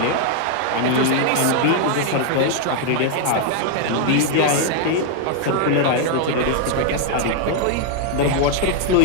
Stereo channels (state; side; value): different; both; correlation 0.00